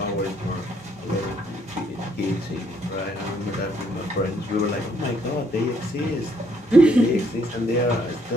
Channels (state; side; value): normal; both; correlation 0.68